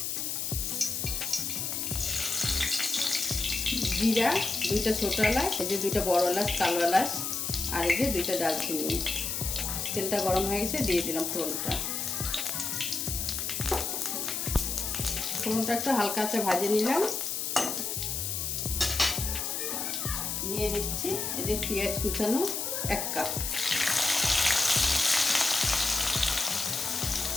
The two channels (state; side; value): noise; left; hiss, 2 dB below the sound